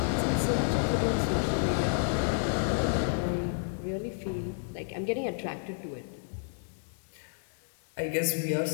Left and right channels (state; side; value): silent; right; 57 dB below the other